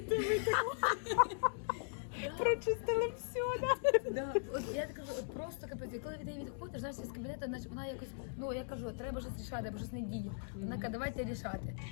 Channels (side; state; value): right; silent; digital silence